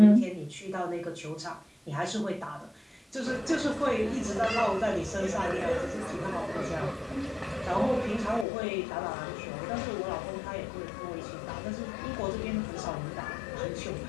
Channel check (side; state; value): right; drops out; at 8.5 s